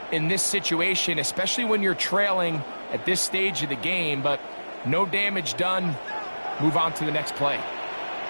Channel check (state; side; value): inverted; both; correlation -1.00